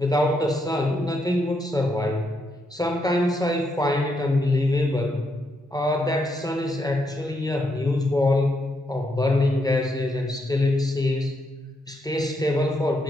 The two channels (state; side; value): normal; both; correlation 0.79